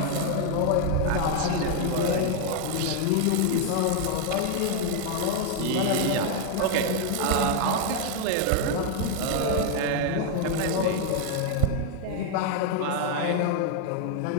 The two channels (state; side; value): different; both; correlation 0.01